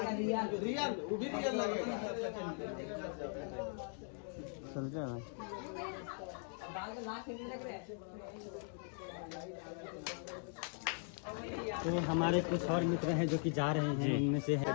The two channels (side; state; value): right; silent; 51 dB below the other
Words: रियल वो भी रियल लगेगा। चल जाए भाई। बाल में लाख नहीं लग रहे हैं। तो हमारे कुछ और मित्र हैं जो कि जा रहे हैं, उनमें से है